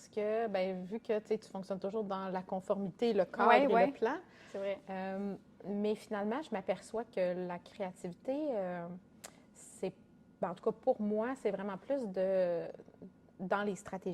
que, ben, vu que tu fonctionnes toujours dans la conformité, le cadre et le plan. C'est vrai. Mais finalement, je m'aperçois que la créativité, en tout cas pour moi, c'est vraiment plus dans les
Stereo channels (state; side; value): identical; both; correlation 1.00